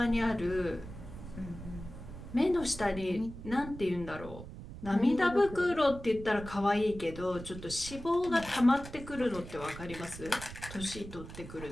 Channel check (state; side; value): noise; right; rumble, 12 dB below the sound